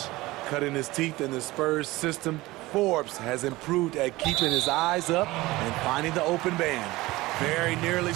Cutting his teeth in the Spurs system, Forbes has improved at keeping his eyes up and finding the open man. Very nearly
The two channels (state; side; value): quieter; left; 19.5 dB